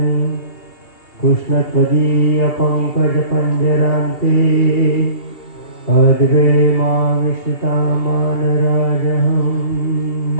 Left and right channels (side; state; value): right; late; 2.8 ms